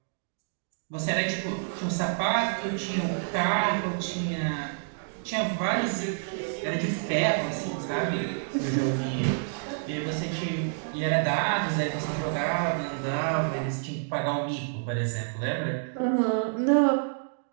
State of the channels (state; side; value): silent; left; digital silence